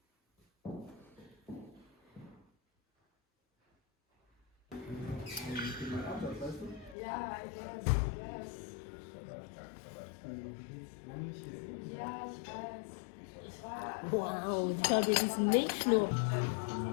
Wow, schau dir diesen Milchschnur.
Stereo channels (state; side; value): drops out; right; at 7.0 s